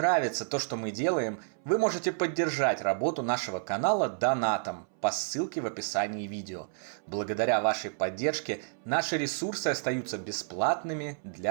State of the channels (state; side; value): silent; left; 58 dB below the other